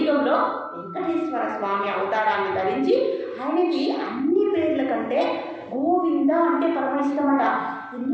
వెంకటేశ్వర స్వామి అవతారాన్ని ధరించి ఆయనకి అన్ని పేర్ల కంటే గోవింద అంటే పరమ ఇష్టమట.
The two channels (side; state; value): both; identical; correlation 1.00